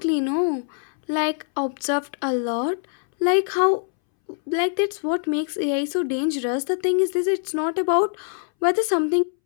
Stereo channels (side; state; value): right; silent; 63 dB below the other